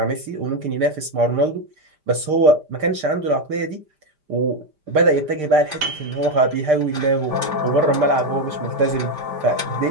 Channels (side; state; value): left; late; 5.0 ms